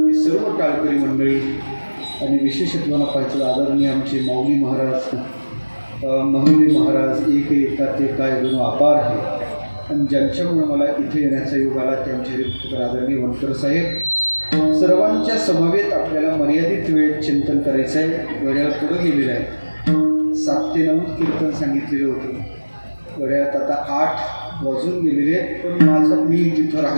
सर्व टाळकरी मंडळी आणि विशेषत्वानं पाहिजे आदरणीय आमचे माऊली महाराज, महिने महाराज एक येतात ते काय गुण अपार आहे आणि ज्यांच्यामुळे मला इथे येण्याचा योग आला ते आमचे हरिभक्तीपण आदरणीय वनकर साहेब. सर्वांच्या समवेत आपल्याला मर्यादित वेळेत चिंतन करायचं आहे. घड्याळ पुढं गेलेलं आहे. 7 ते 9 कीर्तन सांगितलेलं होतं. घड्याळात आता 8 वाजून गेलेले आहेत. पण मी जिथं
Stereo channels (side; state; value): both; inverted; correlation -1.00